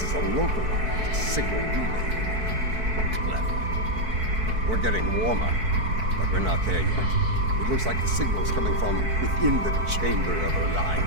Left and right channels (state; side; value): late; left; 4.5 ms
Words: is a localized signal relay. Clever. We're getting warmer, but we're not there yet. It looks like the signal's coming from within the Chamber of